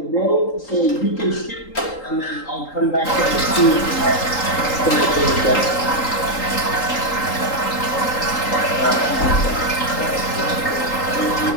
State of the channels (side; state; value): right; late; 3.8 ms